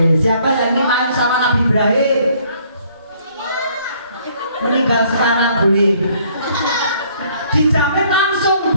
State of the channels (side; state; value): both; inverted; correlation -0.62